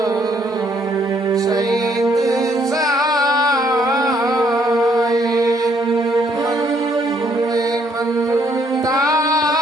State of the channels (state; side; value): normal; both; correlation 0.69